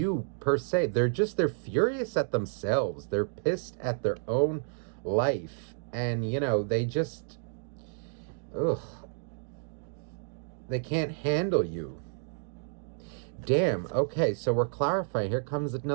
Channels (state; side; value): silent; left; digital silence